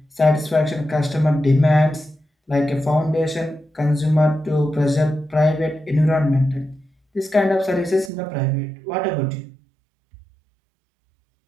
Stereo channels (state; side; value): drops out; left; at 8.1 s